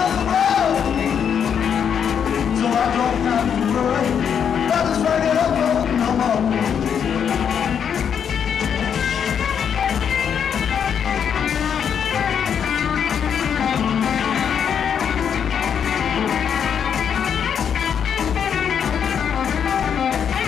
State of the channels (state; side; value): quieter; right; 7.8 dB